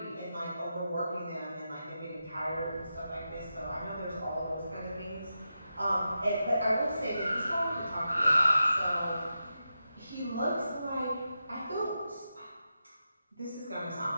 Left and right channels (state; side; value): inverted; both; correlation -0.89